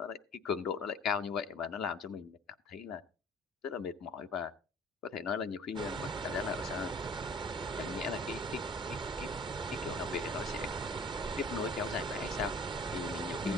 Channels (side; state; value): both; normal; correlation 0.49